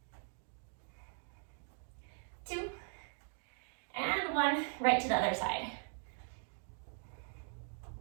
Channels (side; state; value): left; silent; 51 dB below the other